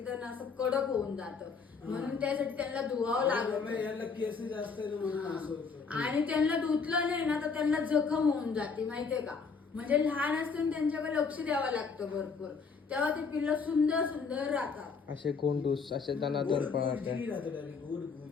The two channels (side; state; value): right; quieter; 5.2 dB